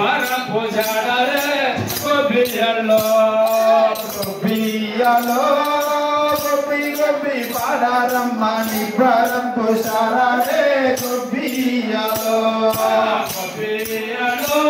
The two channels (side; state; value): both; identical; correlation 1.00